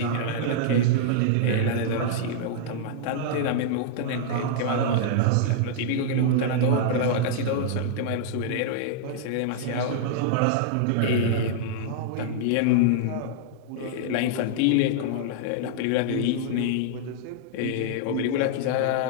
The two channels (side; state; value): both; different; correlation -0.01